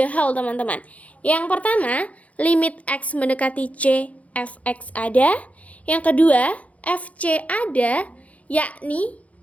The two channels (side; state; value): right; late; 0.067 ms